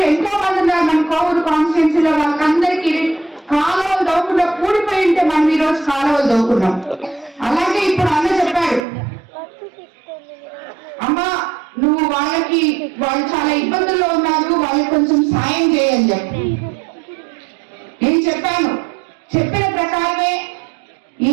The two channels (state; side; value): drops out; left; at 8.8 s